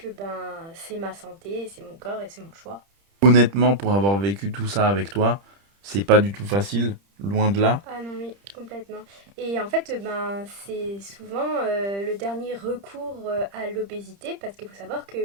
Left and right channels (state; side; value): late; left; 30 ms